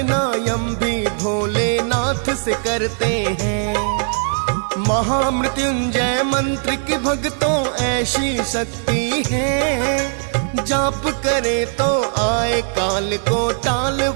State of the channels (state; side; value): silent; left; digital silence